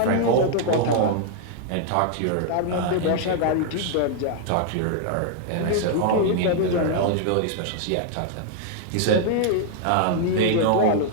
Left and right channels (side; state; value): both; different; correlation 0.00